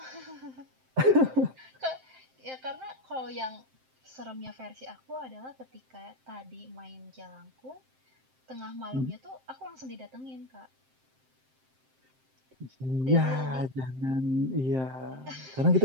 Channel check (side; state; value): left; late; 7.7 ms